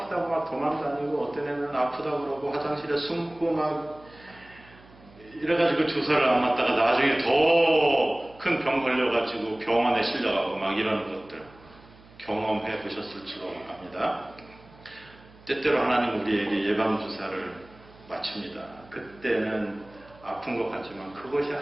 막 도망다니고, 어떤 애는 아프다고 그러고 화장실에 숨고 막 이래가지고 주사를 안 맞다가 나중에 더 큰 병 걸려가지고 병원에 실려가고 막 이런 것들 경험해 보셨을 줄로 압니다. 때때로 하나님 우리에게 예방주사를 맞춥니다. 그때는 아픈 것 같지만 그것이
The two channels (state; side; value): noise; right; hum, 24 dB below the sound